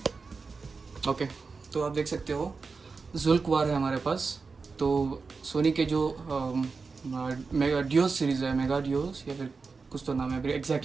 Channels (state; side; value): quieter; left; 4.6 dB